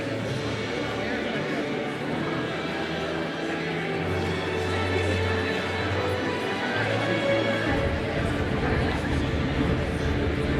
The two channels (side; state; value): both; identical; correlation 1.00